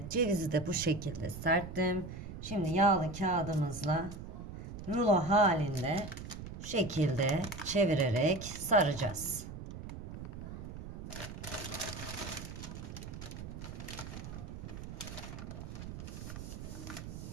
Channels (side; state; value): right; noise; rumble, 9 dB below the sound